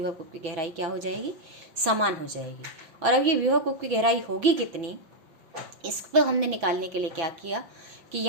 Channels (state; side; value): late; left; 6.0 ms